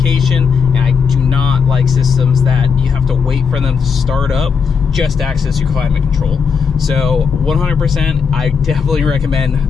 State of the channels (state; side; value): quieter; right; 6.0 dB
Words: and I do not like systems that you have to wait for them to start up just to access your climate control. So 100%, I definitely